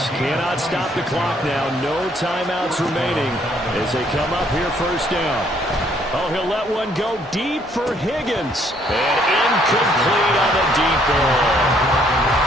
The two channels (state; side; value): normal; both; correlation 0.66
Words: cannot stop the clock now. No timeouts remaining as they come up here 1st down. Oh, he'll let one go deep for Higgins. And incomplete on the deep ball.